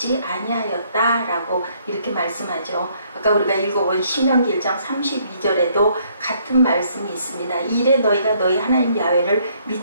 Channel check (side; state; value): both; inverted; correlation -0.66